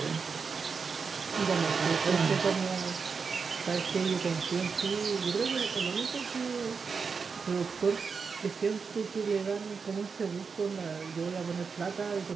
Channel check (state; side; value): quieter; left; 5.4 dB